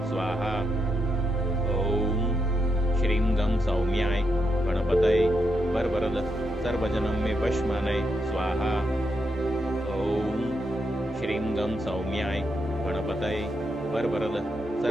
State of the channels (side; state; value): both; normal; correlation 0.82